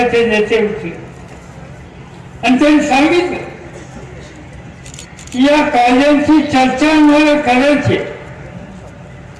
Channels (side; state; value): both; identical; correlation 1.00